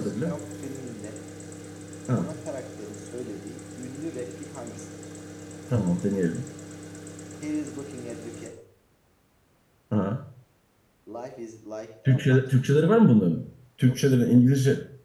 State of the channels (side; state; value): both; identical; correlation 1.00